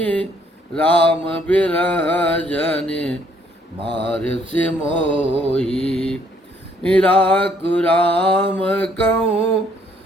राम बिरह जन मार से मोही राकु राम कहूँ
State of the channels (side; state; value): both; normal; correlation 0.66